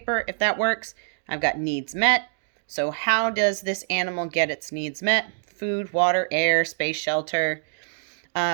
if that works. I've got needs met. So how does this animal get its needs met? Food, water, air, space, shelter.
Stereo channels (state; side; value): silent; left; digital silence